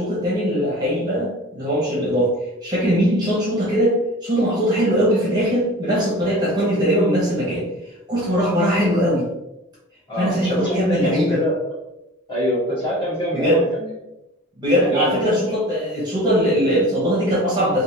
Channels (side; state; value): both; normal; correlation 0.40